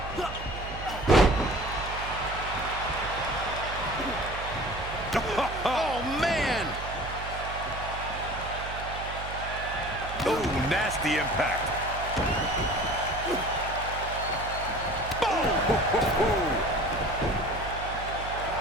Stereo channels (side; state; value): right; noise; hum, 9 dB below the sound